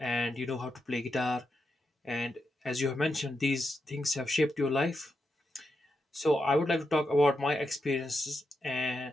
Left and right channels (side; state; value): both; normal; correlation 0.85